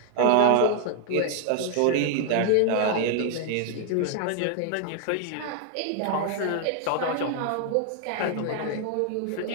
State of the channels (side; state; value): both; different; correlation 0.00